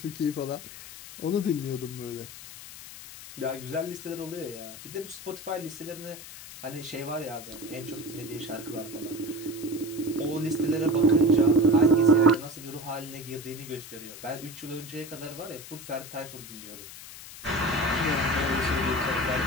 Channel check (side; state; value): left; noise; hiss, 14 dB below the sound